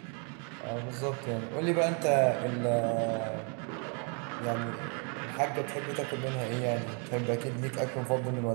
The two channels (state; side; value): quieter; left; 37.8 dB